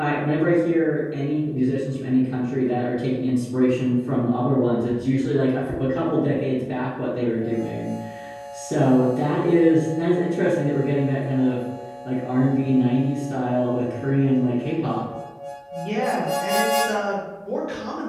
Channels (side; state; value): both; identical; correlation 1.00